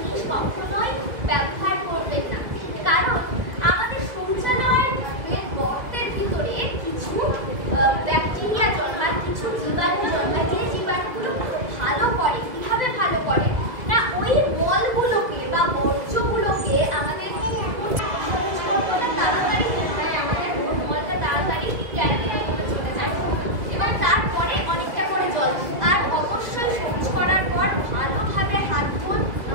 কখনোই ব্যবহার করবেন না। কারণ আমাদের শৌচালয়ের গর্তের ভিতরে কিছু ব্যাকটেরিয়া জন্মায়, কিছু জীবাণু জন্মায়, যে জীবাণুগুলো খুব ভালো করে। কিভাবে ভালো করে না, ওই মলগুলোকে বা বর্জ্যগুলোকে আমাদের তাড়াতাড়ি হয়, আমাদের মলটা তাড়াতাড়ি ক্যান্টিনের মধ্যে চলে যায় এবং তারপরে অনেকটা করে জল। আর অবশ্যই শৌচ করার পর ভালোভাবে হাত ধুন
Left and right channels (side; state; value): left; late; 1.8 ms